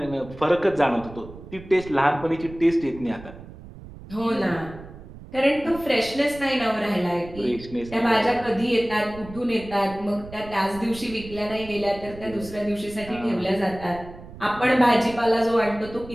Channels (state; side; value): noise; right; rumble, 16 dB below the sound